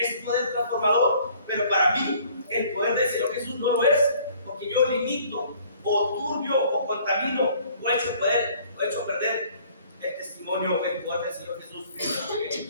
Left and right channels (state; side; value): inverted; both; correlation -0.57